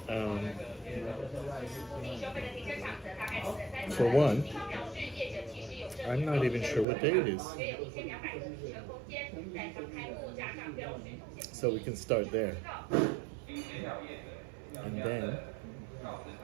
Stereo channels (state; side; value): drops out; left; at 6.9 s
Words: For one, I'm not even sure what day it is. So we can start there. And then,